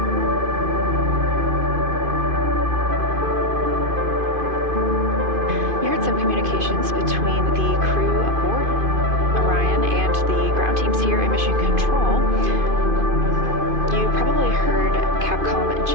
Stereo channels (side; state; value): left; late; 2.5 ms